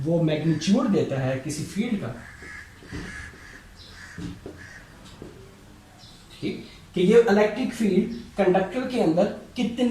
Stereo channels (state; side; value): identical; both; correlation 1.00